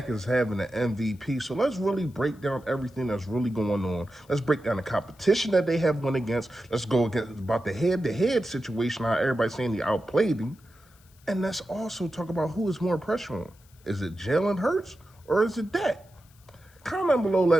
is having an MVP. So let's really break down everything that's really going on. Let's break down the competition that they have won against. Let's go against about the head-to-head situation, how everybody's saying they outplayed him. And let's also talk about who is more pressure on. Is it Jalen Hurts or is it Dak? Comment below,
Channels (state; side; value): noise; left; hiss, 30 dB below the sound